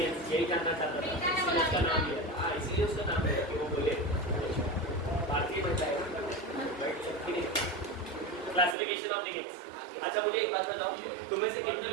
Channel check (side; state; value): left; drops out; at 8.8 s